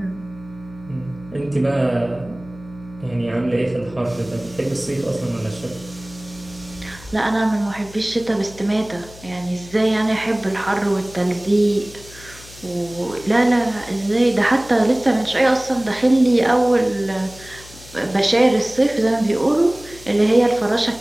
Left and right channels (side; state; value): left; noise; hum, 20 dB below the sound